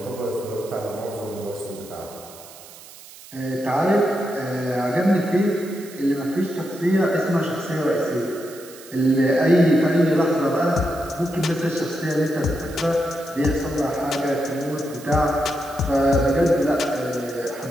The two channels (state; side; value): noise; right; hiss, 19 dB below the sound